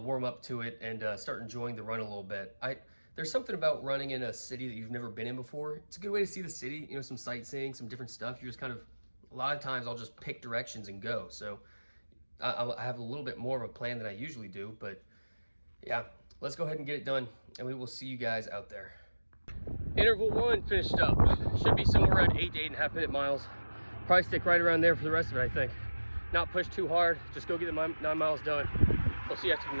warm up to it and start enjoying the run a little bit. There's something about running in a city that you've never been in before. It's a good way to see the city, you know, some sightseeing, some different stuff. You're just kind of, a lot of times I'll just pick directions and go. So I have a little bit more of a plan than I usually do, but yeah. Let's go ahead and get it done, and we will see you guys out there. Interval 1 finished up. Should be somewhere around 8 to 8.5 minute miles. Probably stick right around there for the rest of it, I think. Not push too hard, just go get the 9 miles done. We'll see you after the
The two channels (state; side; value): inverted; both; correlation -1.00